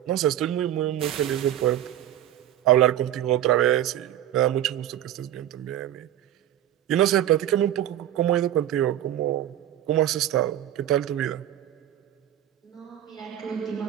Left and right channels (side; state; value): left; quieter; 12.0 dB